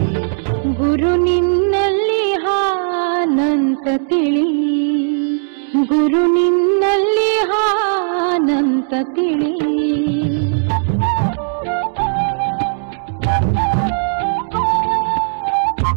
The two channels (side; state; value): left; silent; digital silence